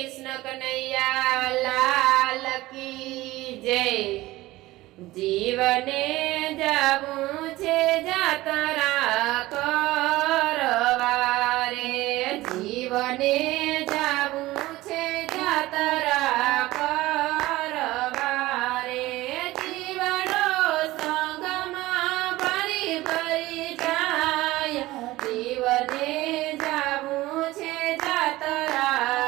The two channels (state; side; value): quieter; left; 18.1 dB